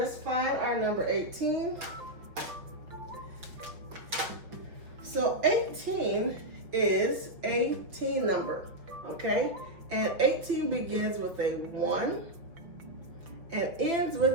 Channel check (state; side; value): late; left; 6.1 ms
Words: find our number 18. So 18 is a teen number, okay? And 18 begins with a 1 and ends